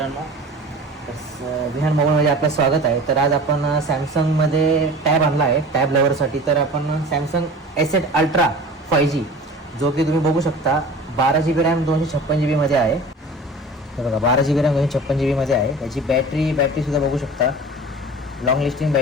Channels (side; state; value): both; normal; correlation 0.39